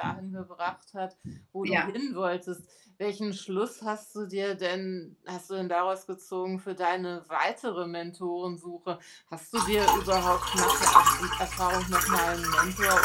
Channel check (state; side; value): identical; both; correlation 1.00